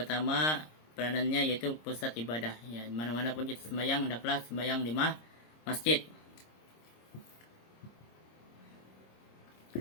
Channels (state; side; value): late; right; 26 ms